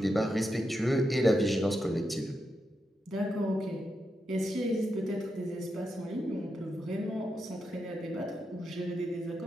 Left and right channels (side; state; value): both; normal; correlation 0.85